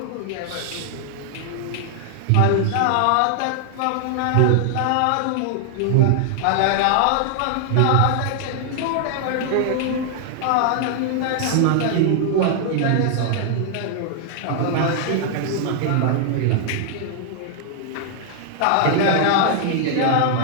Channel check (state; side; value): different; both; correlation 0.00